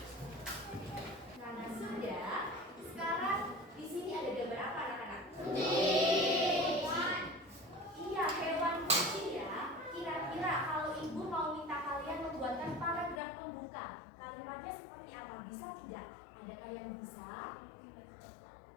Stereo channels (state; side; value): drops out; right; at 13.2 s